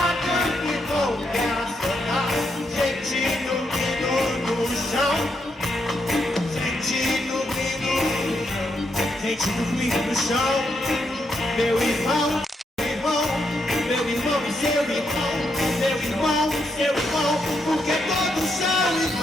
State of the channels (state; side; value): normal; both; correlation 0.79